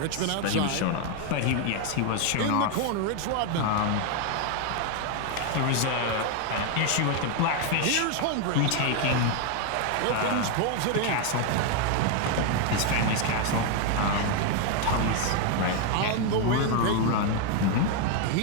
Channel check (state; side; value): different; both; correlation 0.01